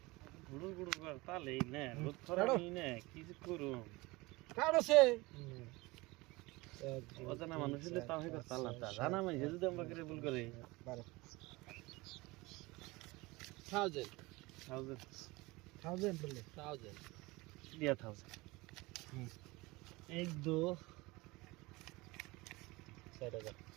गुड़ुर गुड़ुर करता ले ने बहुत थोड़ा नहीं ने किस करूं काढो से অজানা মানুষ হলে তাও হয়তো চালাতা জানা মানে যদি আমরা করে ভুল করে 1000 1000 বলে 1000 দিয়া থাও 1 2 4000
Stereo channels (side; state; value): left; quieter; 22.6 dB